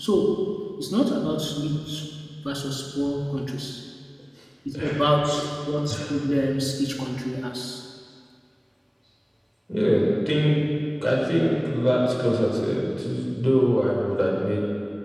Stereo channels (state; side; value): identical; both; correlation 1.00